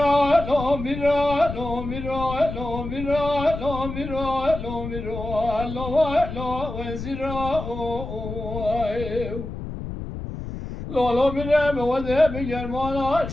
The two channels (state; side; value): noise; left; rumble, 8 dB below the sound